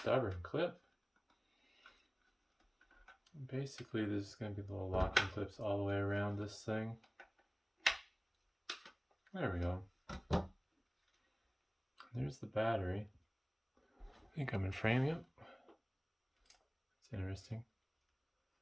clip. Basically, there's going to be little locking clips all the way around this thing. There we go. There's the battery. I think I'm in frame, yep. It's interesting.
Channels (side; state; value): both; identical; correlation 1.00